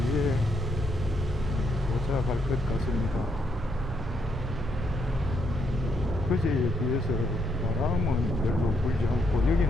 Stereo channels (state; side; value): normal; both; correlation 0.76